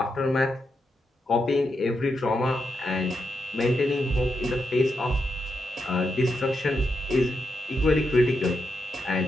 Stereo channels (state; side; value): normal; both; correlation 0.84